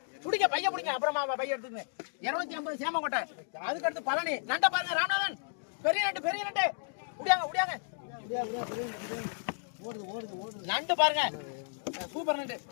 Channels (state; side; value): silent; right; digital silence